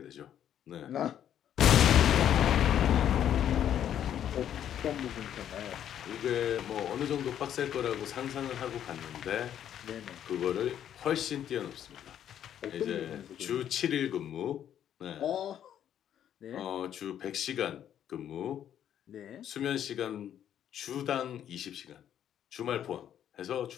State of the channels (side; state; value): right; quieter; 10.1 dB